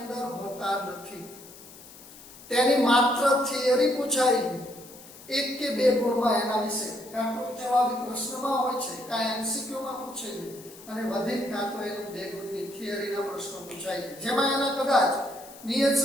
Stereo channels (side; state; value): left; noise; hiss, 19 dB below the sound